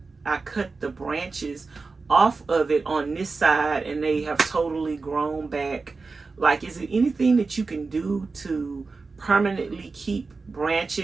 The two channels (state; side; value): quieter; left; 4.1 dB